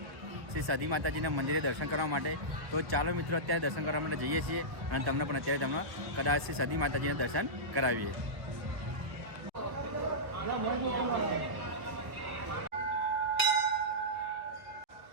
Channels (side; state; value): left; late; 1.3 ms